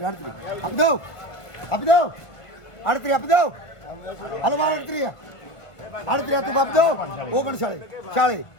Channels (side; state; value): right; late; 1.5 ms